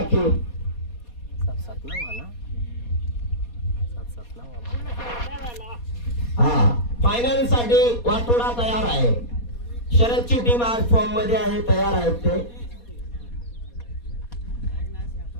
फायनल साठी वाटोडा तयार आहे. शरदची टीम आज फॉर्म मध्ये आहे, तयार आहेत ते.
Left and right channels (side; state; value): right; late; 4.2 ms